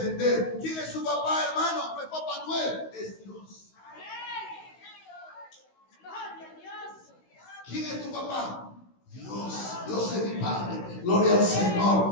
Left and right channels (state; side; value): late; right; 16 ms